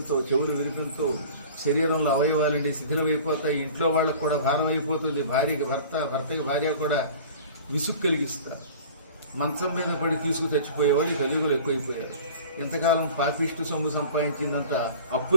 చెవులు వినిపించవు, శరీరంలో అవయవాలండి శిథిలమైపోతాయి. ఇంట్లో వాళ్ళకు కూడా భారం అయిపోతుంది. భార్యకి భర్త, భర్తకి భార్య కూడా విసుగు కలిగిస్తారు. మంచం మీద పడి తీసుకు చచ్చిపోయేవాళ్ళు కలియుగులు ఎక్కువైపోయారు. ఇంతకాలం పాపిష్టి సొమ్ము సంపాదించిందంతా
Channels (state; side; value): inverted; both; correlation -0.43